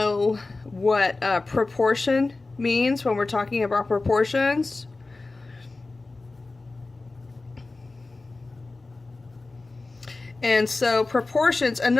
what proportion means when we're talking about proportions. And so proportions,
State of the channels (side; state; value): right; quieter; 3.4 dB